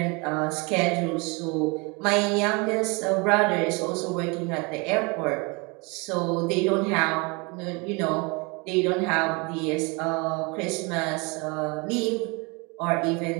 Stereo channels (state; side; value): quieter; left; 28.9 dB